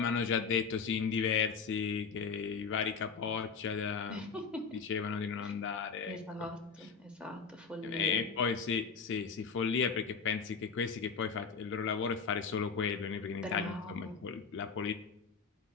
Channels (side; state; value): right; quieter; 5.5 dB